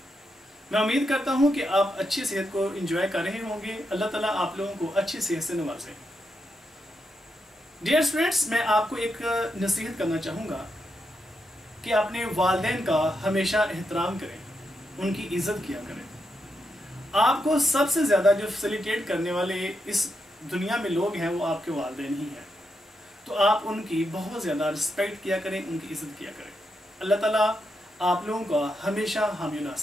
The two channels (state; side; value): normal; both; correlation 0.84